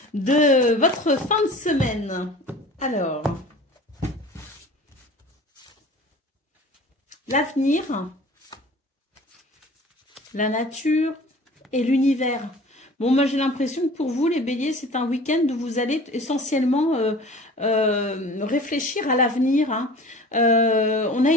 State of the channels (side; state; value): both; normal; correlation 0.43